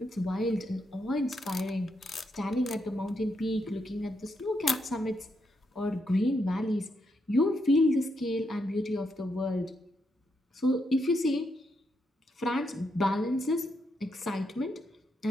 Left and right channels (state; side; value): normal; both; correlation 0.80